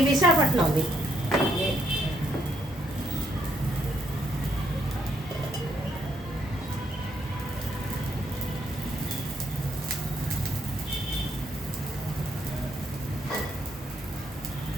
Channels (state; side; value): normal; both; correlation 0.72